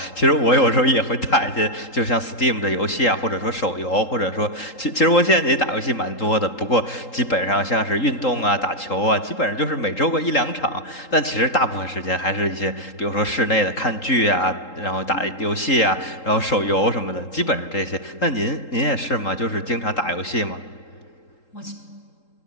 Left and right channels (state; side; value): late; right; 3.8 ms